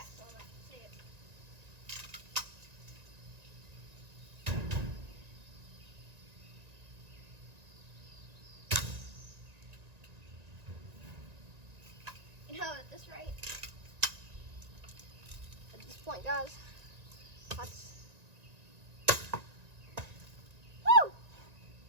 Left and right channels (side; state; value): left; late; 1.9 ms